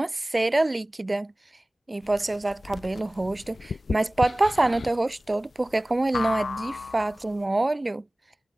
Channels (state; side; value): normal; both; correlation 0.98